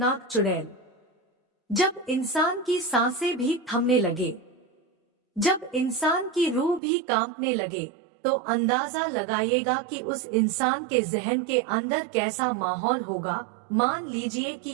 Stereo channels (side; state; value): left; drops out; at 6.8 s